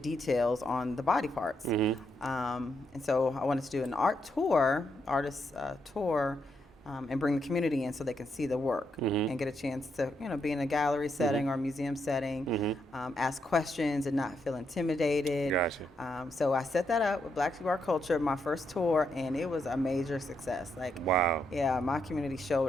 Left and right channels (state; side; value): normal; both; correlation 0.79